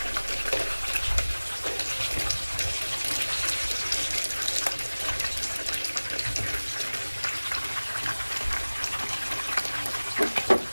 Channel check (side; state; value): both; inverted; correlation -1.00